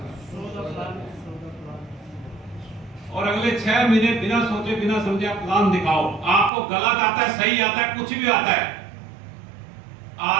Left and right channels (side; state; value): left; drops out; at 6.5 s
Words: और अगले 6 महीने बिना सोचे बिना समझे आप प्लान दिखाओ। आपको गलत आता है, सही आता है, कुछ भी आता है।